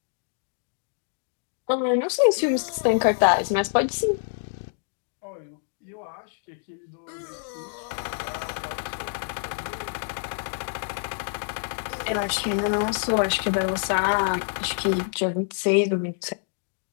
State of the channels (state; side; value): silent; right; digital silence